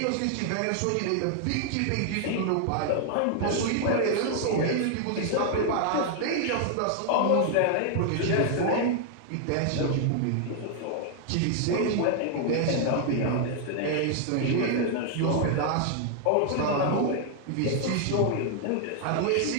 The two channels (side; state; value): both; different; correlation 0.00